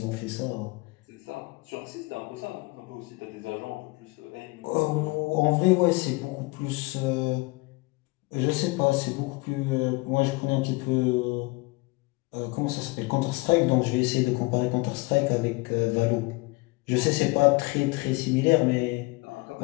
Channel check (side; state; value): right; quieter; 25.1 dB